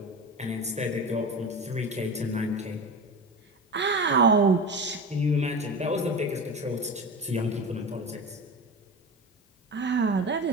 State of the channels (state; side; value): normal; both; correlation 0.28